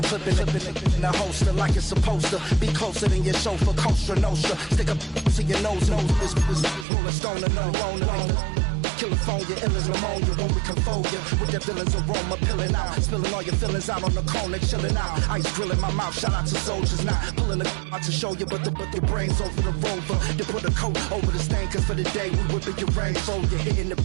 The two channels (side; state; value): left; drops out; at 6.9 s